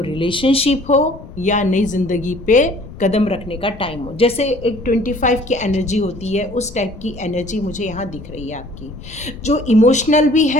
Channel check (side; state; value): left; noise; rumble, 16 dB below the sound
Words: रिलेशनशिप हो या नई ज़िंदगी पे कदम रखने का टाइम हो। जैसे एक 25 की एनर्जी होती है, उस टाइप की एनर्जी मुझे यहाँ दिख रही है आपकी, जो इमोशनल भी